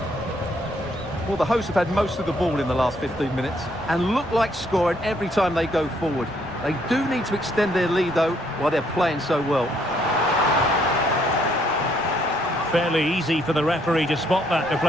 Well, the hosts have had most of the ball in the last 15 minutes and look like scoring every time they go forward. They do need to extend their lead, though, while they're playing so well. Fairly easy for the referee to spot that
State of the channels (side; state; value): right; noise; rumble, 20 dB below the sound